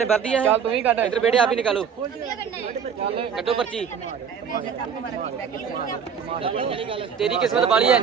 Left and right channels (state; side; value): quieter; left; 7.1 dB